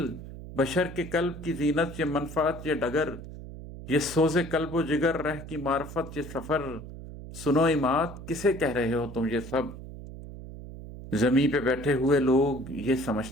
बशर के कल्ब की जीनत ये मनफत ये डगर, ये सोजे कल्ब जिगर रह की मार्फत ये सफर। सुनो इमाद किसे कह रहे हो तुम ये सब, जमीन पे बैठे हुए लोग ये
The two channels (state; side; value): noise; right; hum, 12 dB below the sound